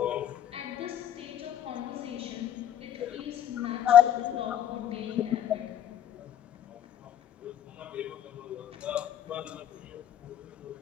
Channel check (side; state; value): right; quieter; 10.4 dB